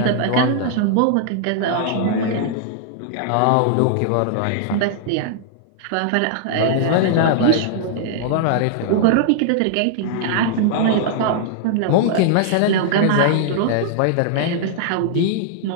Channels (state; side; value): different; both; correlation -0.01